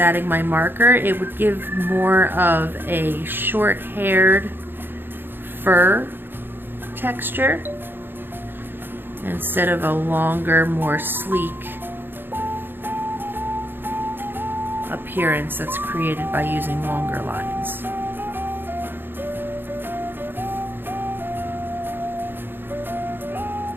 my marker, it would give more of a short-haired fur texture instead of a longer, more sleek appearance that's created by using longer lines.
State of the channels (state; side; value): late; left; 0.10 ms